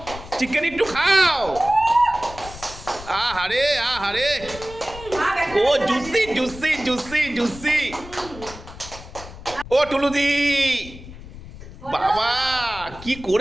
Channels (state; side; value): noise; left; rumble, 15 dB below the sound